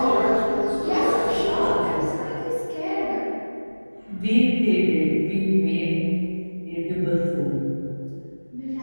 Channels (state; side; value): inverted; both; correlation -1.00